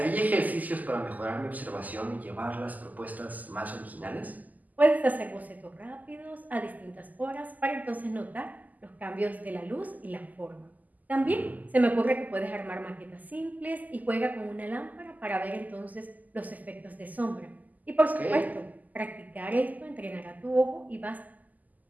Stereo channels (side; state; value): left; late; 0.080 ms